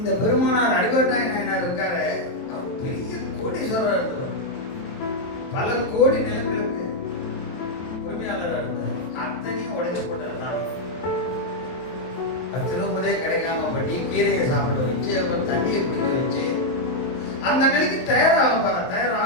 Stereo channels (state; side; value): late; right; 23 ms